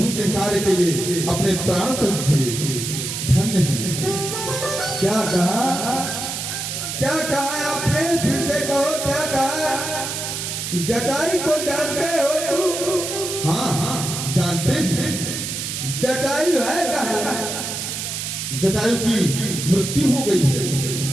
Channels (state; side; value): noise; right; hiss, 4 dB below the sound